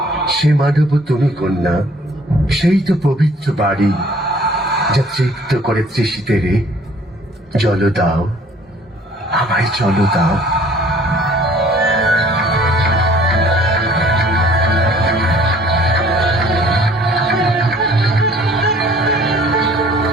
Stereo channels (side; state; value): both; normal; correlation 0.55